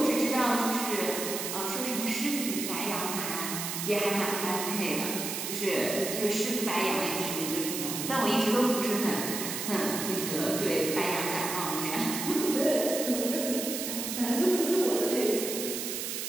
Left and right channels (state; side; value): noise; right; hiss, 4 dB below the sound